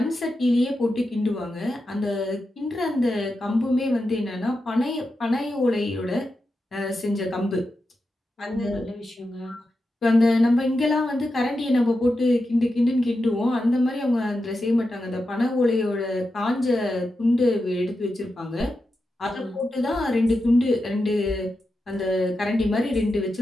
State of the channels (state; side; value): normal; both; correlation 0.89